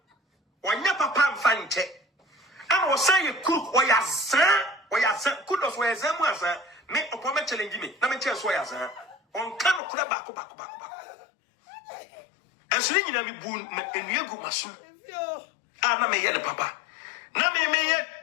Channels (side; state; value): right; drops out; at 9.8 s